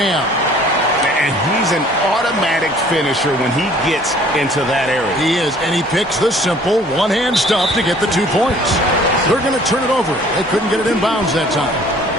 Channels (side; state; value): both; normal; correlation 0.54